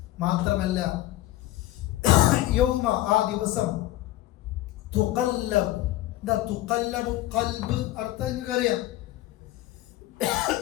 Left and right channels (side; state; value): right; quieter; 15.8 dB